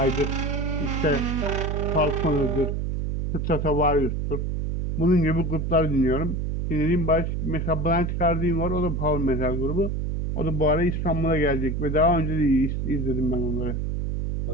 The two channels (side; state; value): right; noise; hum, 1 dB below the sound